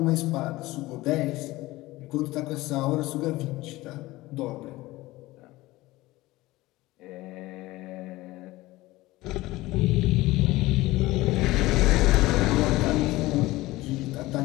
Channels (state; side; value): quieter; right; 18.9 dB